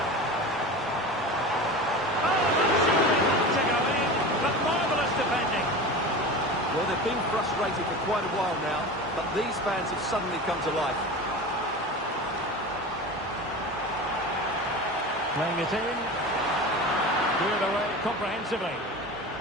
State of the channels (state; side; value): normal; both; correlation 0.31